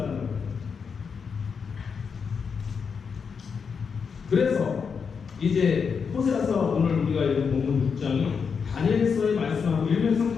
거예요. 그래서 이제 호세아서 오늘 우리가 읽은 본문 6장이 다니엘서의 말씀하고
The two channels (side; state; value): right; quieter; 6.0 dB